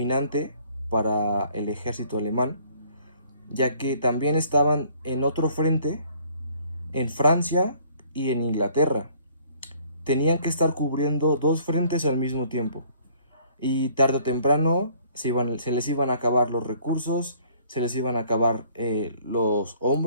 para el ejército alemán, ya que también estaban en otro frente en Francia y en Inglaterra. Tenían que estar cubriendo dos frentes al mismo tiempo. Y tarde o temprano se les iban a acabar los recursos, se les iban a acabar los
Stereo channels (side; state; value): both; inverted; correlation -0.59